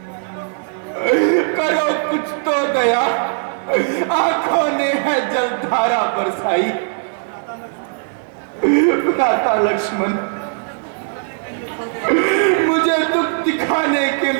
करो कुछ तो दया, आंखों ने है जलधारा बरसाई। भ्राता लक्ष्मण, मुझे दुख दिखाने के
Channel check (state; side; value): silent; left; 60 dB below the other